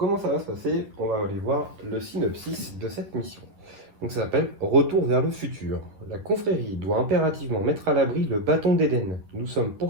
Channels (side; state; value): left; late; 10 ms